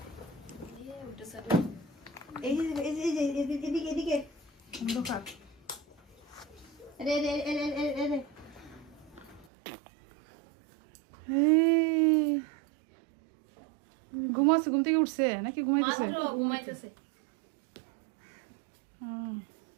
অন্ধকার। ঘুমাচ্ছে ঘুম থেকে উঠছে নাকি ঘুমাইতেছে ঘুমাইতেছে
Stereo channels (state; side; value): drops out; left; at 9.5 s